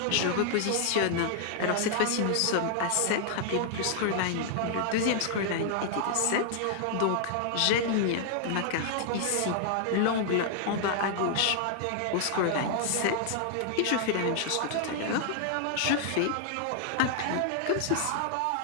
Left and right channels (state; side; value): different; both; correlation 0.00